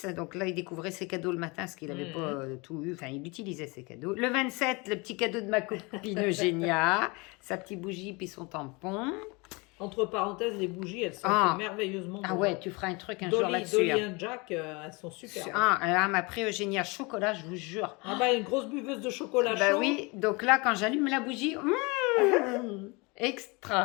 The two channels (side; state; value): right; quieter; 27.4 dB